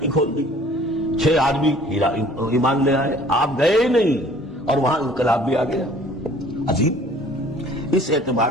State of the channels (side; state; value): both; normal; correlation 0.53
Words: کھول دی، 6 آدمی ایمان لے آئے. آپ گئے ہی نہیں اور وہاں انقلاب بھی آ گیا. عجیب. اس اعتبار